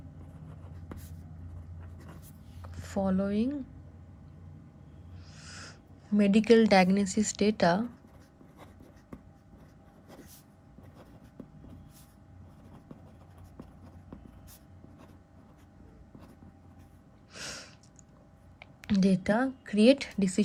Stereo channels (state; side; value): identical; both; correlation 1.00